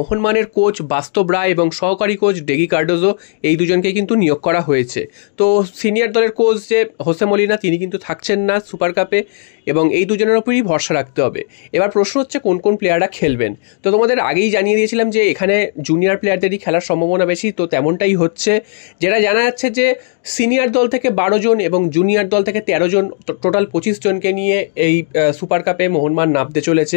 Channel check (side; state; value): right; silent; digital silence